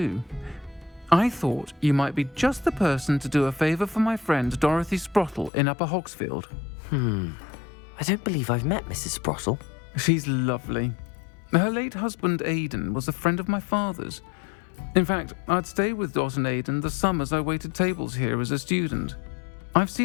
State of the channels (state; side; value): drops out; right; at 5.5 s